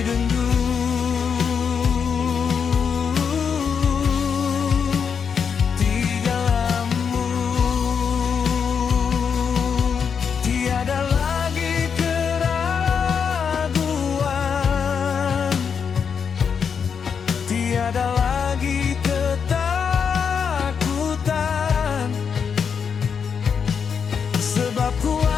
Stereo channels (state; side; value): quieter; right; 6.6 dB